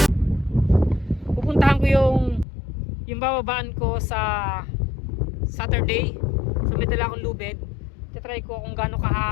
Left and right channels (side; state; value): right; drops out; at 2.5 s